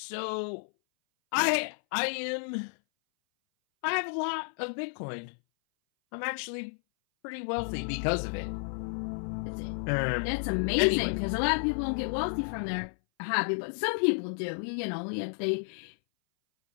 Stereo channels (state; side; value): silent; right; 57 dB below the other